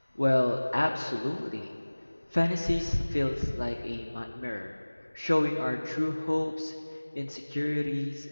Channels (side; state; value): both; inverted; correlation -1.00